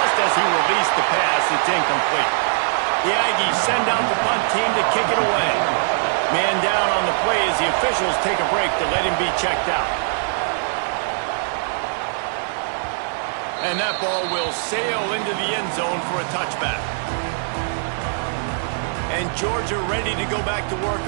as he released the pass. It's incomplete. The Aggies send out the punt team to kick it away. Man down on the play as the officials take a break to let him be checked out. And that ball will sail into the end zone for a touchback. And Georgia ready to go back to work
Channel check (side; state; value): left; silent; digital silence